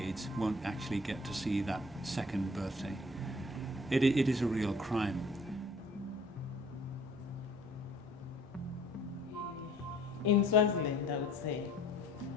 won't actually get to see that second birthday, it is a real crime. In Swaziland, I would say,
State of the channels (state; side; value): normal; both; correlation 0.53